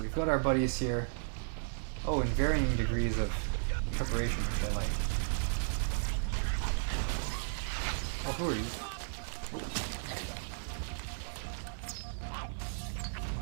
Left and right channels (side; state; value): left; silent; digital silence